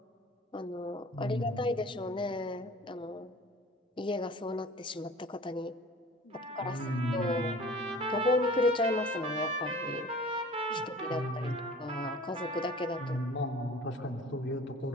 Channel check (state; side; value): normal; both; correlation 0.44